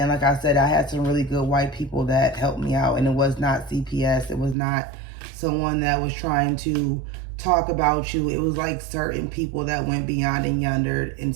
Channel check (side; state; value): left; drops out; at 4.5 s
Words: like I said, I had some really good white people that helped me out. And it was not CPS. It was not someone that was trying to talk about you. It was like certain people that went beyond and yonder and